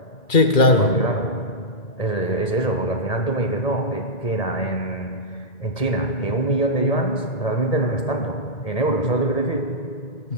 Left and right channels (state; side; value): late; right; 2.4 ms